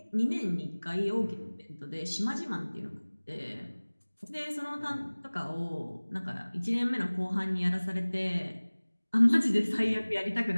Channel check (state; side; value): inverted; both; correlation -1.00